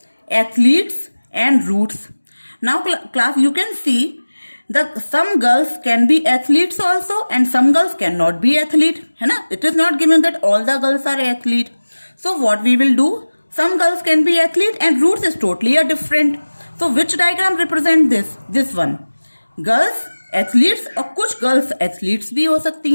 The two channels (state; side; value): inverted; both; correlation -1.00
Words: athletes and roots. Now class, you can see that some girls can be athletes also and some girls cannot be athlete, है ना? It is not given that all the girls are athlete. So what we will do, some girls can be athlete and roots is totally a different. So which diagram represent this one? Girls athletes और कुछ girls athletes भी हो सकती